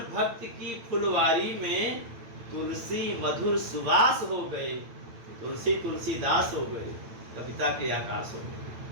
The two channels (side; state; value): left; late; 8.9 ms